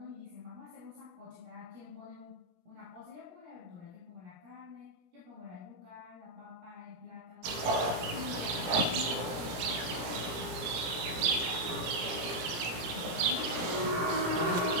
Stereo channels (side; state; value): left; late; 17 ms